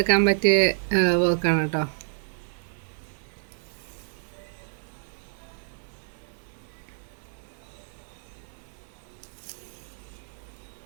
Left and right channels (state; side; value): silent; left; 59 dB below the other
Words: പറ്റിയ വർക്കാണ് കേട്ടോ.